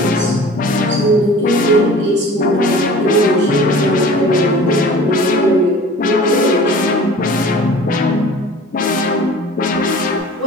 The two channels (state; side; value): normal; both; correlation 0.44